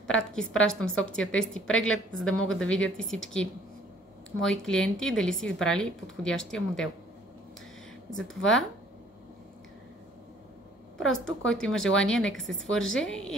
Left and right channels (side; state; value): both; normal; correlation 0.58